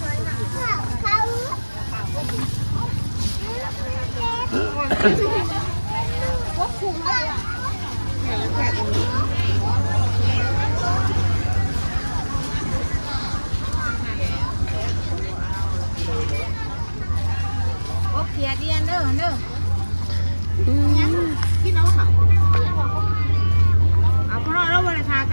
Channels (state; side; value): inverted; both; correlation -1.00